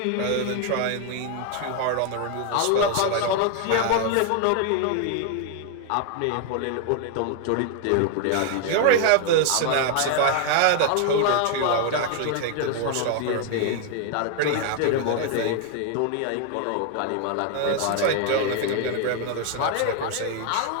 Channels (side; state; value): both; different; correlation 0.00